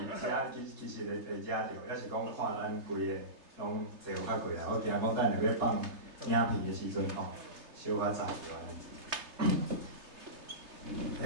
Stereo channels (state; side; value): late; left; 3.3 ms